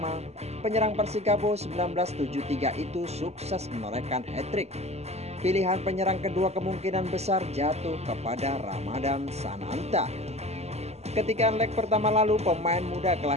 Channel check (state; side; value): late; left; 0.31 ms